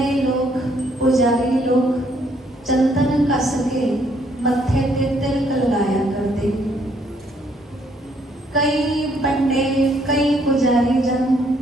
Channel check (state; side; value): normal; both; correlation 0.68